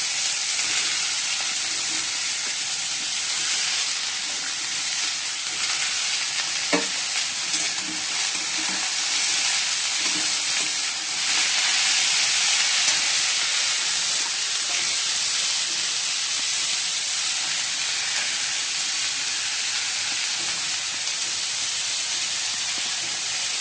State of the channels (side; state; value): both; identical; correlation 1.00